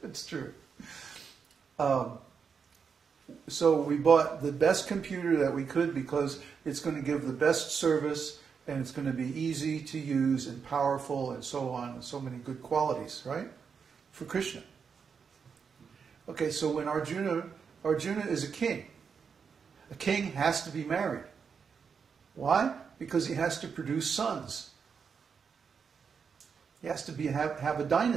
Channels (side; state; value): left; quieter; 6.2 dB